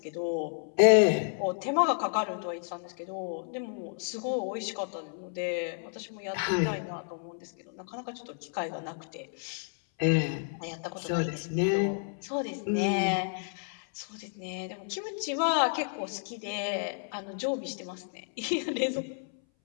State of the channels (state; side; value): silent; right; 57 dB below the other